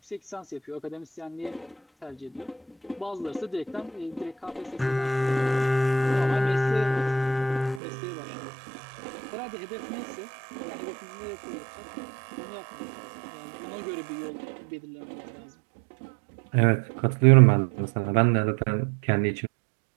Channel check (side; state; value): left; drops out; at 7.8 s